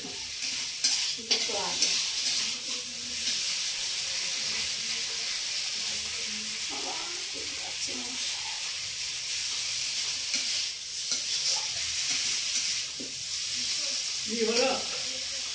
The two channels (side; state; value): both; identical; correlation 1.00